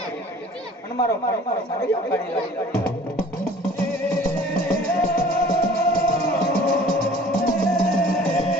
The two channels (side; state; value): both; normal; correlation 0.49